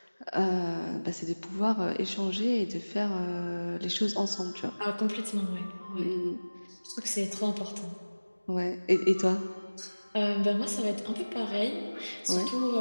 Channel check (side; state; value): both; inverted; correlation -1.00